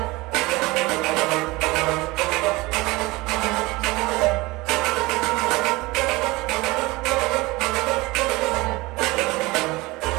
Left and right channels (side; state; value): left; quieter; 22.0 dB